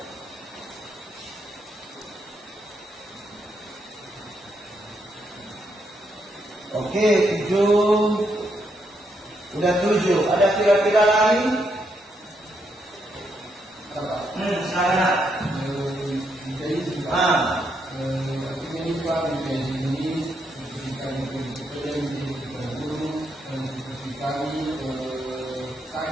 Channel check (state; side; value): normal; both; correlation 0.78